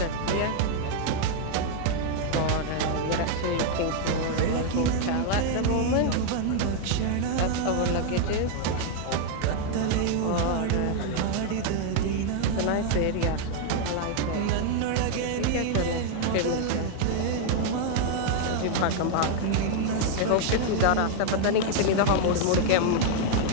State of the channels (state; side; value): different; both; correlation 0.00